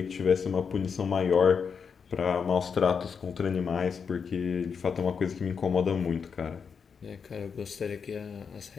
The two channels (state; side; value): quieter; right; 6.2 dB